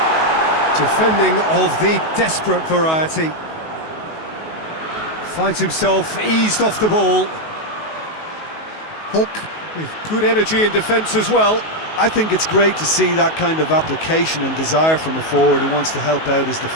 Defending of the desperate variety. Finds himself eased off the ball. Hulk with good energy in defence as well. I think it's great to see that kind of application and desire from a forward who wants to help out his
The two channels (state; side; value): late; right; 19 ms